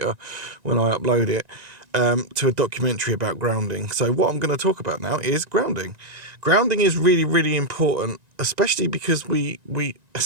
when I upload it, to a documentary about grounding. So what I'm going to talk about now is grounding. Grounding is really important, especially because we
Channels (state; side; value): late; left; 1.9 ms